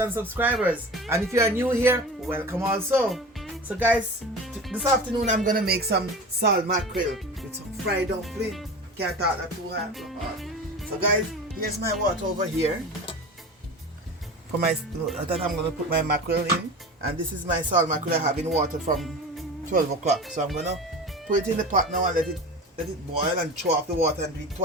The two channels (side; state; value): both; normal; correlation 0.33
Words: subscribers. And if you are new here, welcome also. So guys, this afternoon I'm gonna make some salt mackerel with some fried dumpling. Can't talk that too hard. So guys, here's my water over here. For my that I'm gonna put my mackerel in. And this is my salt mackerel I have in water from 12 o'clock. So I'm gonna put it in the pot now and let it boil and throw off the water and do it